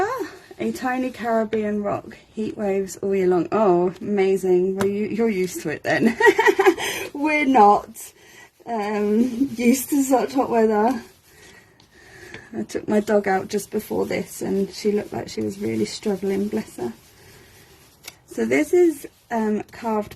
a tiny Caribbean rock. Heat waves all year long. Oh, amazing. Well, you're used to it then. We're not used to such hot weather. I took my dog out just before this and she looked like she was really struggling, bless her. So this is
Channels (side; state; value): both; identical; correlation 1.00